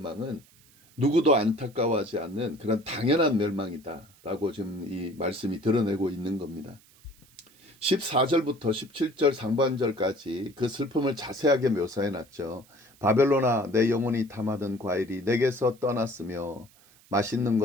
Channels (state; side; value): noise; right; hiss, 28 dB below the sound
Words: 누구도 안타까워하지 않는 그런 당연한 멸망이다라고 지금 이 말씀이 드러내고 있는 겁니다. 14절부터 17절 상반절까지 그 슬픔을 자세하게 묘사해 놨죠. 바벨론아 내 영혼이 탐하던 과일이 내게서 떠났으며 맛있는